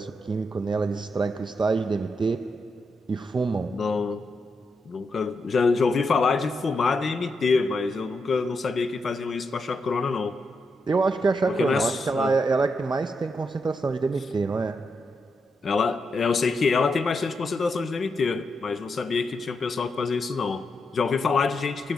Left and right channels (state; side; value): normal; both; correlation 0.83